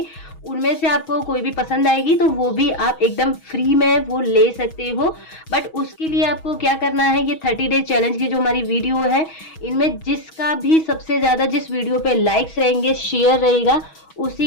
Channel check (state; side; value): late; right; 6.2 ms